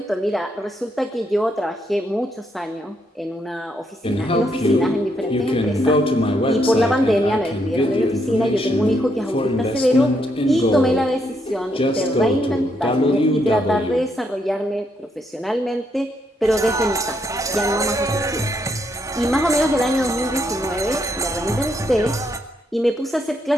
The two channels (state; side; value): normal; both; correlation 0.76